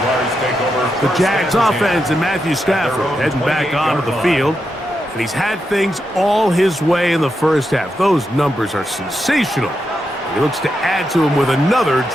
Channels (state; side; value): normal; both; correlation 0.85